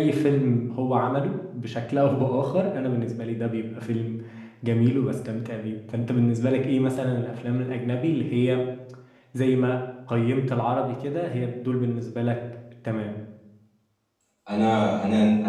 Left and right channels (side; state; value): both; identical; correlation 1.00